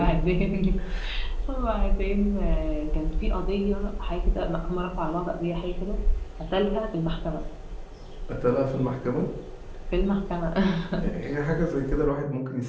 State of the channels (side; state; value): both; identical; correlation 1.00